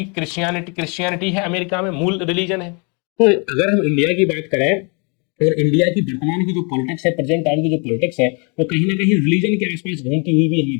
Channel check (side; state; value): right; quieter; 34.3 dB